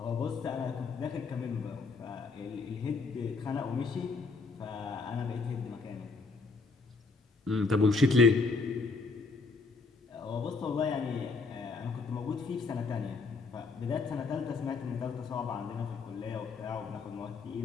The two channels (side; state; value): right; quieter; 4.2 dB